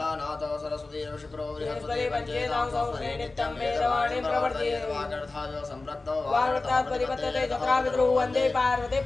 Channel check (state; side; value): quieter; right; 3.4 dB